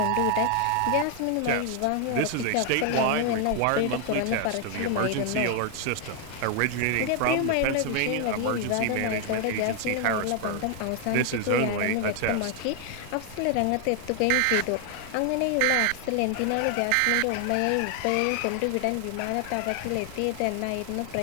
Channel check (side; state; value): both; different; correlation 0.00